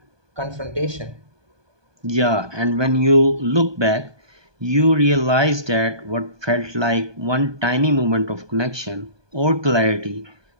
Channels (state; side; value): late; left; 1.2 ms